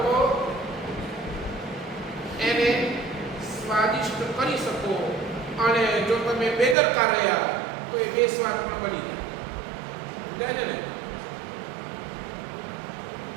તો એને સ્વાદિષ્ટ કરી શકો, અને જો તમે બેદરકાર રહ્યા તો એ બેસ્વાદ પણ બની જાય ને.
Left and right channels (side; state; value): left; drops out; at 6.8 s